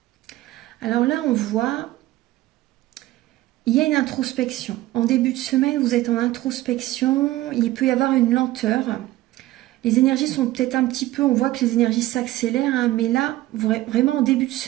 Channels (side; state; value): left; quieter; 16.5 dB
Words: Alors là, on voit, il y a une introspection. En début de semaine, vous êtes en introspection, il peut y avoir une lenteur. Les énergies sont peut-être un petit peu, on voit que les énergies s'accélèrent, hein, mais là, vraiment en début de